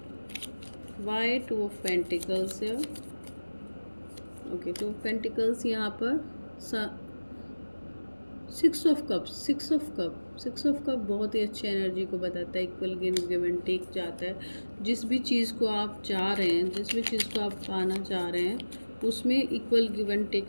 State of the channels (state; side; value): inverted; both; correlation -1.00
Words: Why 2 of pentacles here? Okay, 2 of pentacles यहाँ पर 6 ऑफ कप बहुत ही अच्छी एनर्जी को बताता है। इक्वल गिव एंड टेक जाता है। जिस भी चीज़ को आप चाह रहे हैं, जिस भी चीज़ को आप पाना चाह रहे हैं उसमें इक्वल गिव एंड टेक